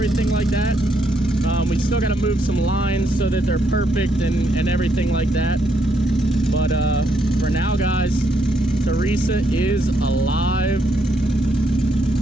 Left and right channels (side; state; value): both; normal; correlation 0.75